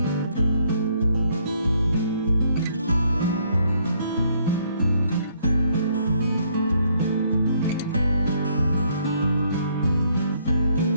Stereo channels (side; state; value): both; inverted; correlation -0.68